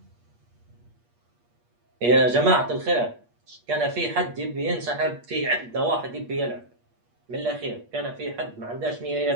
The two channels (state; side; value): late; left; 8.4 ms